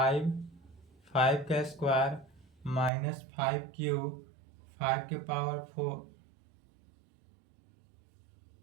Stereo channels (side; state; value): left; drops out; at 2.9 s